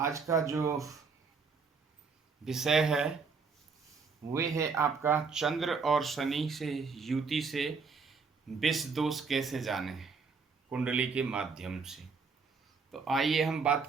का जो विषय है वे है आपका चंद्र और शनि से युति से विष दोष कैसे जाने कुंडली के माध्यम से। तो आइए हम बात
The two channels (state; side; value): quieter; left; 5.0 dB